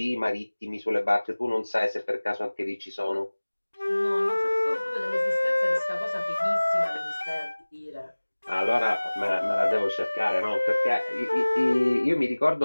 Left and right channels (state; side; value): inverted; both; correlation -1.00